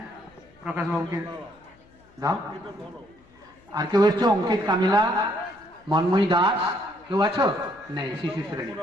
প্রকাশবাবুকে দাও। আর কেউ এসছো? অঙ্কিত, কামিলা, মন্ময়ী দাস, কেউ আছো? নেই। শিশু শ্রেণী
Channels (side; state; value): left; noise; hum, 29 dB below the sound